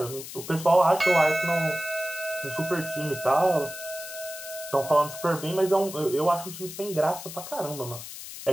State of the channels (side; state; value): left; noise; hiss, 11 dB below the sound